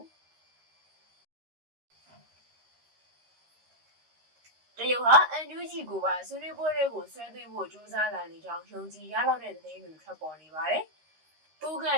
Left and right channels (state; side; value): late; left; 13 ms